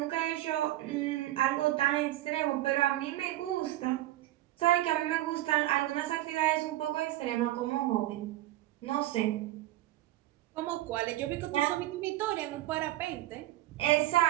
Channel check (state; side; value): quieter; left; 15.5 dB